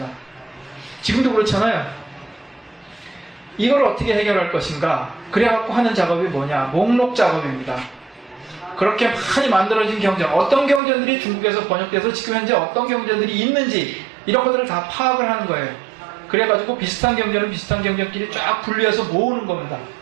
지금도 그렇잖아요. 이걸 어떻게 해결할 것인가? 그래갖고 하는 작업이 뭐냐? 목록 작업입니다. 그렇게 많이 만들어진 경전, 어떤 경전들이 중국에서 번역돼서 지금 현재 어떤 경전들이 있는지 이런 것들을 다 파악을 하는 거예요. 그래가지고 비슷한 경전은 비슷한 경전끼리 쫙 분류해서 모으는 겁니다.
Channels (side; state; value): left; drops out; at 10.8 s